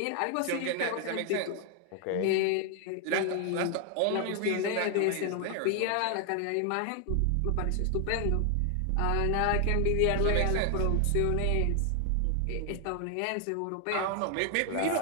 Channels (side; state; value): both; different; correlation 0.00